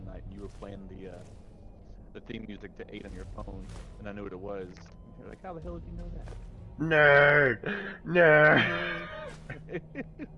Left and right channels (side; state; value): both; identical; correlation 1.00